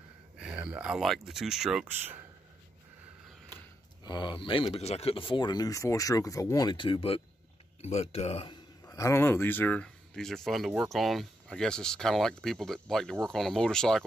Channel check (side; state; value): both; normal; correlation 0.81